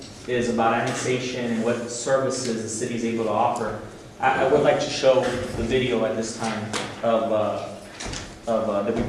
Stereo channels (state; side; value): identical; both; correlation 1.00